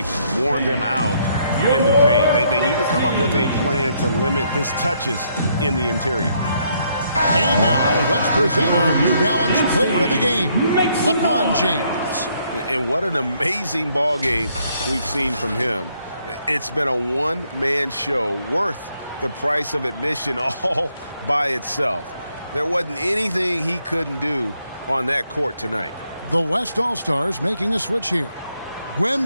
worn them out in the paint. They need to come up with a plan to limit his touches in the interior. And now let's present our New Balance player of the game, LeBron James. And what an amazing ball game we've seen from him. It's been a one-man show worth the price of admission all by itself. There wasn't anything he couldn't do on that court tonight. The West All-Stars making a switch here.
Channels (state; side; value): inverted; both; correlation -0.72